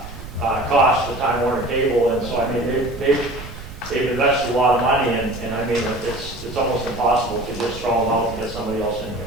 for Time Warner Cable, and so, I mean, they've invested a lot of money, and I mean, it's almost impossible to just throw them out and get somebody else in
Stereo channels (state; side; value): noise; right; rumble, 13 dB below the sound